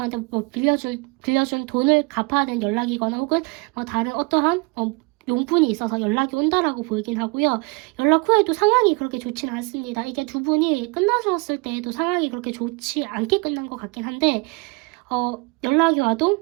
뭐 빌려준 돈을 갚아야 되는 연락이거나 혹은 뭐 다른 어떠한 용분이 있어서 연락이 온다라고 보이긴 하고요. 연락 후에도 상황이 그렇게 좋지는 않습니다. 이게 두 분이 끝나셨을 때에도 상황이 그렇게 좋지 않게 끝난 것 같긴 한데 연락이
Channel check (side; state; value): left; quieter; 28.6 dB